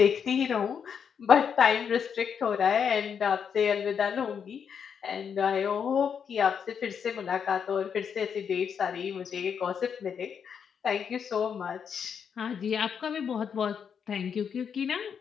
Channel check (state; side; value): quieter; right; 7.2 dB